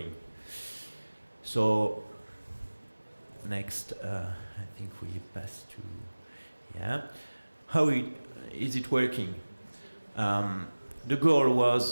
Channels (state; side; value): inverted; both; correlation -1.00